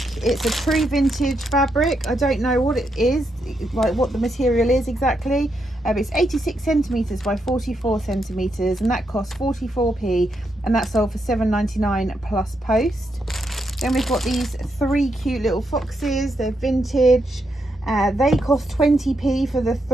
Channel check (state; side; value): normal; both; correlation 0.81